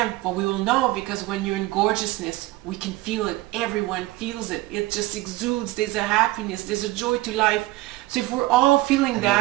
but we will know because when you're in gorgeousness, we can feel it. Everyone feels it. It just exudes. There's a happiness. There's a joy to life. So if we're all feeling And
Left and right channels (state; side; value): quieter; left; 19.2 dB